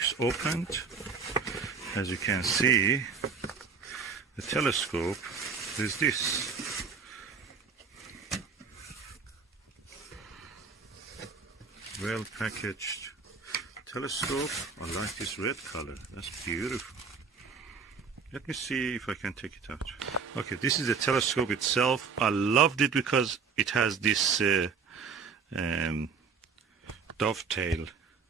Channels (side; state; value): left; quieter; 5.5 dB